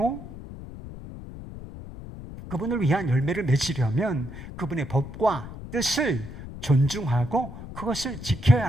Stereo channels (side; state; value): left; noise; rumble, 12 dB below the sound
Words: 그분을 위한 열매를 맺으려면 그분의 법과 뜻을 존중하고 그것을 지켜야